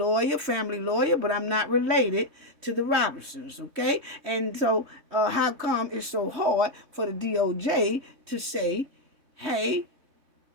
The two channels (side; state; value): left; late; 3.6 ms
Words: family lawyer, but I'm not related to the Robinsons, okay? And so how come it's so hard for the DOJ to say, hey,